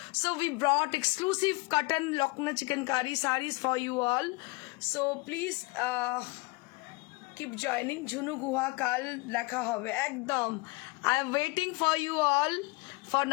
So we brought exclusive cotton Lucknow chikankari sarees for you all. So please keep joining. Jhunu Guha কাল দেখা হবে একদম। I am waiting for you all for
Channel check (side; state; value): right; quieter; 25.2 dB